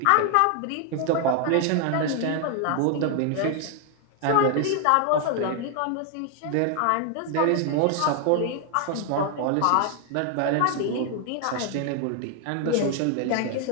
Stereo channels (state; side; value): different; both; correlation 0.00